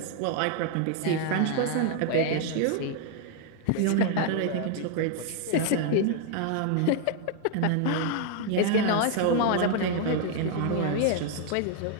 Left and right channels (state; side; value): different; both; correlation 0.00